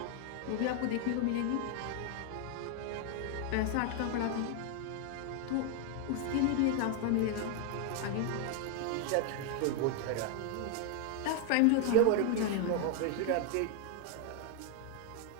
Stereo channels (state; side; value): different; both; correlation 0.00